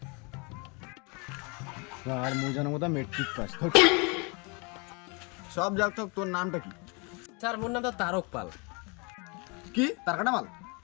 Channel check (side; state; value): right; quieter; 31.3 dB